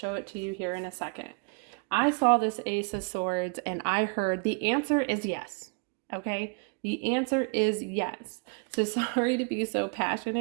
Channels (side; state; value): left; quieter; 35.7 dB